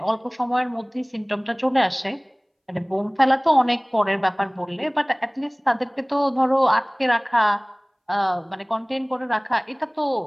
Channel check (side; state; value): both; identical; correlation 1.00